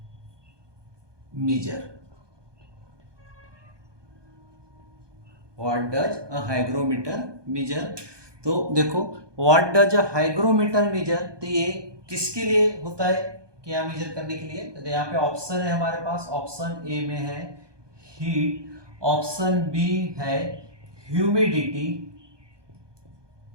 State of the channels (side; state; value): left; late; 1.2 ms